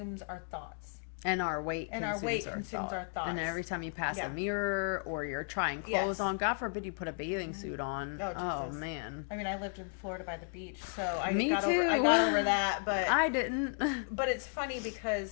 our thoughts. And our weight and our weight consumes our thoughts. And every time you pass Yeah. a mirror or you're trying clothes Yes. on, God forbid you put a bathing suit on. Oh, Jesus. Man. I mean, I lived in Florida by the beach, so I Me got too. over that, but I didn't. but it's funny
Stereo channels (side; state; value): right; silent; 55 dB below the other